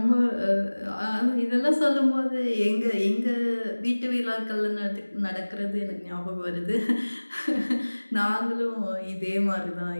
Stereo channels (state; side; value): inverted; both; correlation -1.00